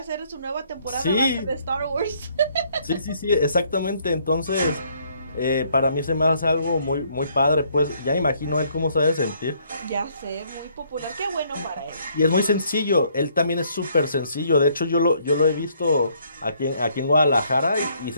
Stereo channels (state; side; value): inverted; both; correlation -0.67